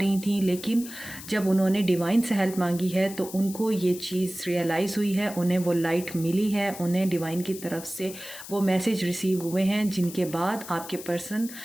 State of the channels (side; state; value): left; noise; hiss, 13 dB below the sound